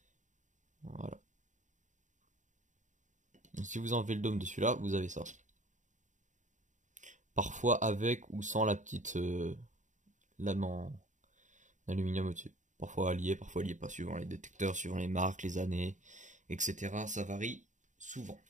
Voilà. Donc, si vous enlevez le dôme de celui-là, vous avez ça. Parfois avec ou sans la petite lame en aluminium au-dessus. Parfois lié pas, suivant les détecteurs, suivant les marques, les années, etc. Ça varie souvent.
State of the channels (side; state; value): left; late; 0.36 ms